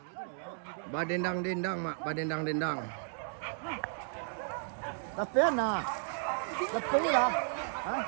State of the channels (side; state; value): left; silent; digital silence